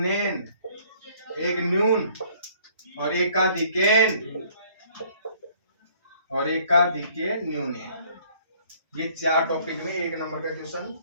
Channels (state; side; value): inverted; both; correlation -0.59